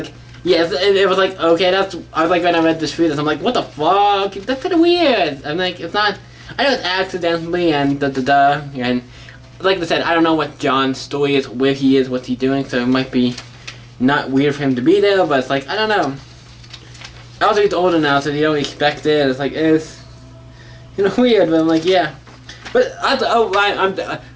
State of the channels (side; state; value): both; identical; correlation 1.00